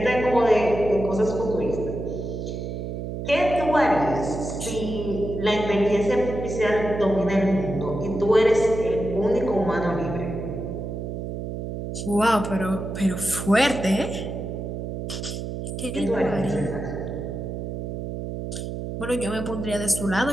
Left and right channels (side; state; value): right; noise; hum, 5 dB below the sound